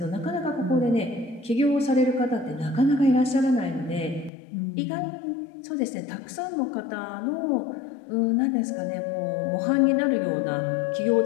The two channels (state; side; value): drops out; right; at 4.3 s